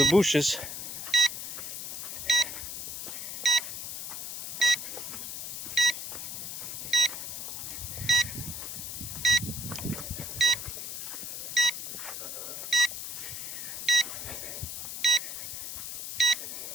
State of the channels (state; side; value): noise; left; hiss, 6 dB below the sound